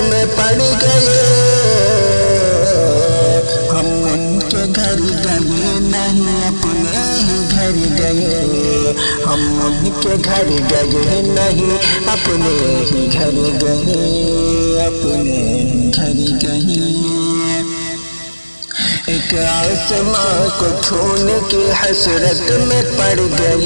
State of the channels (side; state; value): both; inverted; correlation -1.00